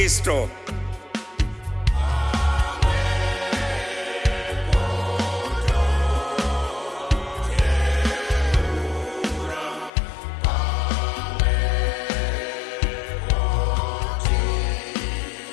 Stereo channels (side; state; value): right; drops out; at 9.9 s